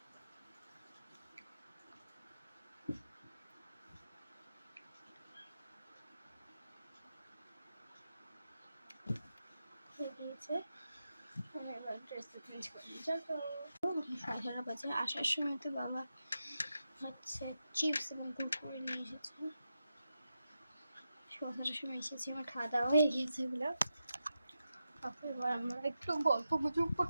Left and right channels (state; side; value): inverted; both; correlation -0.89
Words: হয়ে গিয়েছে, এবার ড্রেসটা চেঞ্জ করে নিই। চলো 11:30 বাজে। আসার সময় তো বাবা হচ্ছে চিপস এবং কুরকুরে নিয়ে এসেছে। 11:30 সময় এসেছি, আমার খাওয়া দাওয়া হয়ে গিয়েছে এগুলো। তারপর এবার আমরা একটু গল্প গুজব